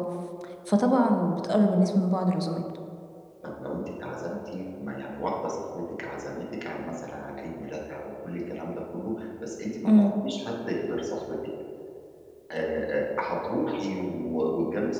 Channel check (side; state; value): both; identical; correlation 1.00